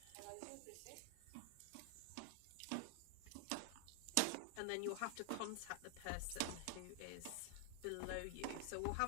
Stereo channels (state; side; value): different; both; correlation 0.00